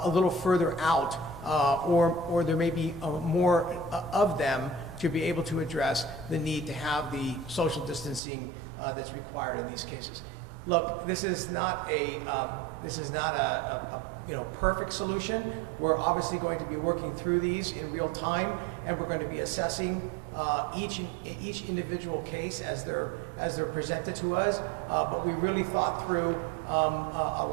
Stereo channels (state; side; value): drops out; left; at 8.2 s